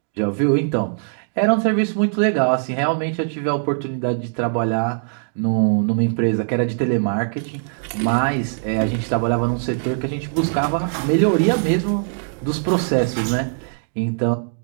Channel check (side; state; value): left; silent; digital silence